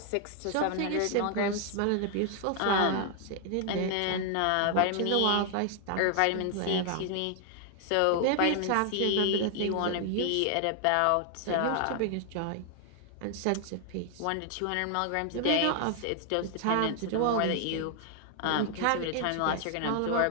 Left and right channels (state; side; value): different; both; correlation 0.00